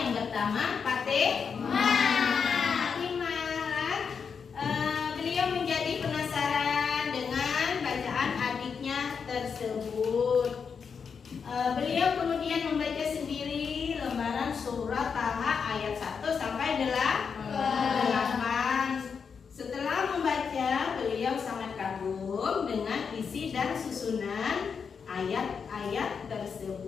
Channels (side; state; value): right; quieter; 6.1 dB